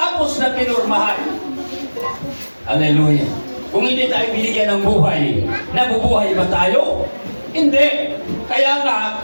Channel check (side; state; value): both; inverted; correlation -1.00